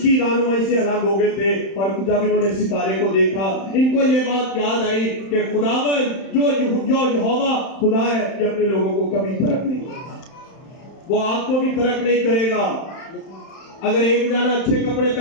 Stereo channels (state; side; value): late; right; 31 ms